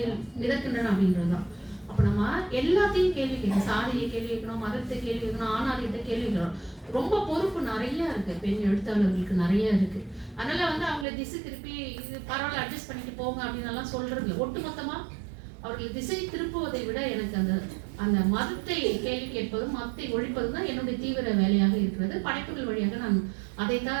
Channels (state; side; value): drops out; left; at 11.1 s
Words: மிதக்கின்றன அப்படின்றதுதான். அப்ப நம்ம எல்லாத்தையும் கேள்வி கேட்கணும். சாதியை கேள்வி கேட்கணும், மதத்தை கேள்வி கேட்கணும், ஆணாதிக்கத்தை கேள்வி கேட்கணும். ரொம்ப பொறுப்பு நிறைய இருக்கு, பெண் எழுத்தாளர்களுக்கு நிறைய இருக்கு. அதனால வந்து அவங்களை திசை திருப்பி இது பரவாயில்ல அட்ஜஸ்ட் பண்ணிட்டு போங்க அப்படின்னு எல்லாம் சொல்றது. ஒட்டுமொத்தமா அவர்கள் திசை திருப்புவதை விட எனக்கு அந்த மதத்தை கேள்வி கேட்பதும் மதத்தை ஒழிப்பதும் தான் என்னுடைய தீவிர வேலையாக இருக்கிறது. படைப்புகள் வழியாக நான்